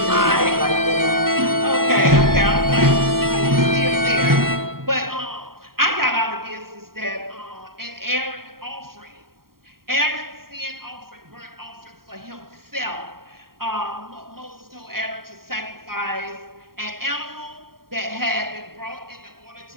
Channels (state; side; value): late; left; 0.93 ms